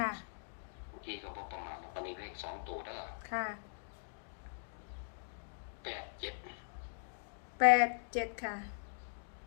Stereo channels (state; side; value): silent; right; digital silence